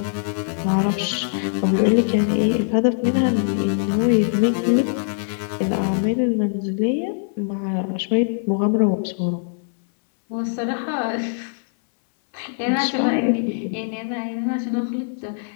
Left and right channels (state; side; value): silent; right; 64 dB below the other